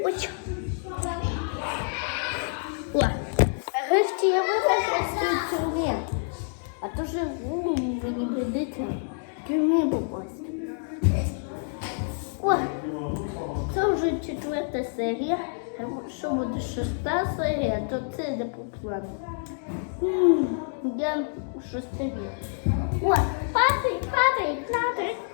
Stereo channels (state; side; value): silent; right; digital silence